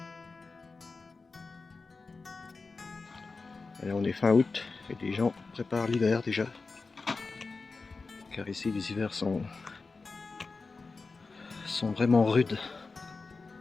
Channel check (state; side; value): quieter; right; 4.1 dB